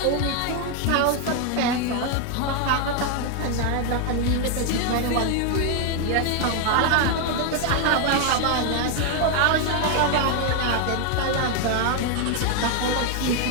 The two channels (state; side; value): different; both; correlation 0.01